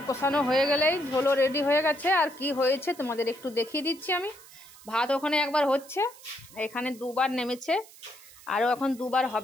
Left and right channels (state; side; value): noise; right; hiss, 21 dB below the sound